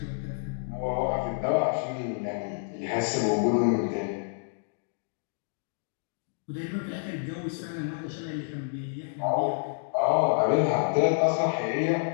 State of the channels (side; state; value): right; silent; digital silence